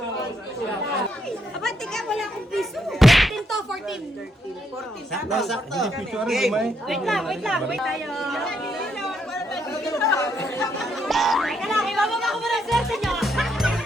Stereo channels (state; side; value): normal; both; correlation 0.76